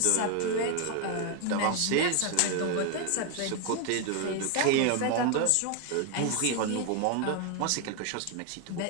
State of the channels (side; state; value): both; different; correlation 0.01